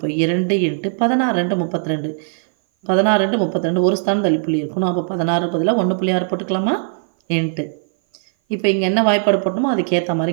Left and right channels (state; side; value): silent; left; 57 dB below the other